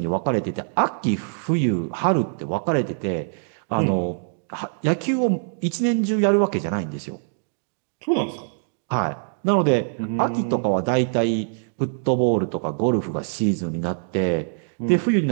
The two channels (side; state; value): left; silent; digital silence